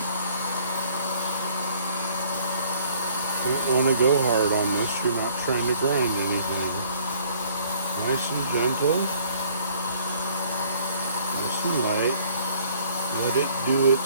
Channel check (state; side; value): inverted; both; correlation -0.58